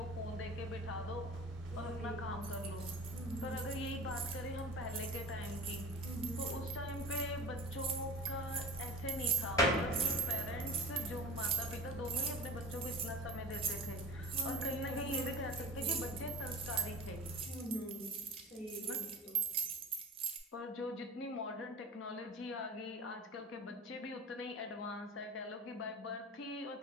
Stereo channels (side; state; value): both; normal; correlation 0.40